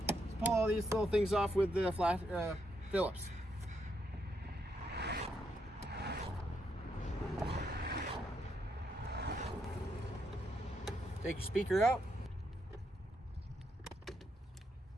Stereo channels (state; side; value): normal; both; correlation 0.78